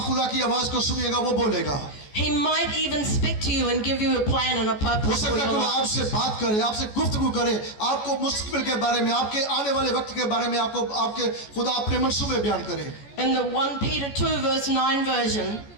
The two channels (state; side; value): late; right; 14 ms